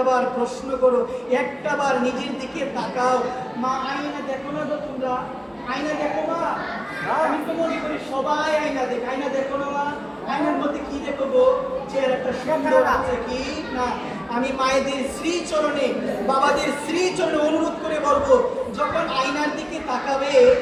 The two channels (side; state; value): both; identical; correlation 1.00